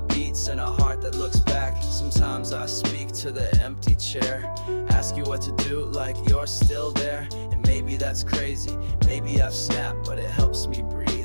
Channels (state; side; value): inverted; both; correlation -1.00